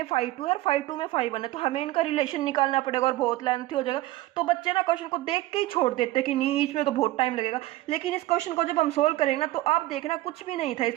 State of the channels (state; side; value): quieter; left; 16.9 dB